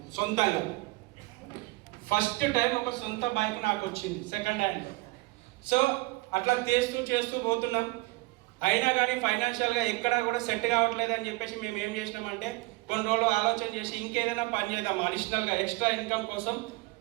సొంతంగా. ఫస్ట్ టైం ఒక సొంత బైక్ నాకు వచ్చింది సెకండ్ హ్యాండ్. సో అట్లా చేస్తూ పోతున్నాం. అయినా కానీ ఫైనాన్షియల్గా ఎక్కడా కూడా సెట్ కావట్లేదు అని చెప్పేసి మేము ఏం చేసినామంటే కొన్ని రోజులు ఆలోచన చేసి ఇంకేదైనా పని చేద్దాం, అడిషనల్గా ఎక్స్ట్రా ఇన్కమ్ కోసం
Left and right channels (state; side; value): quieter; left; 23.5 dB